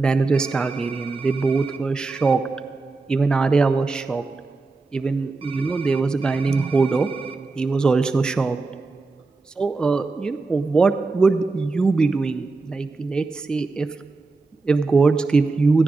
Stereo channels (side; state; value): left; quieter; 3.8 dB